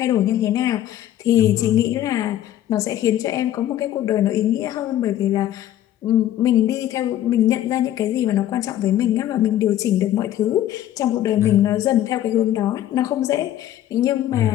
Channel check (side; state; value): right; quieter; 12.4 dB